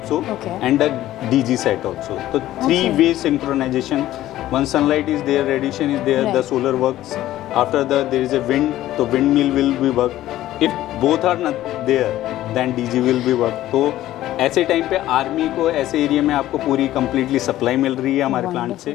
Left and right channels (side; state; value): right; quieter; 14.3 dB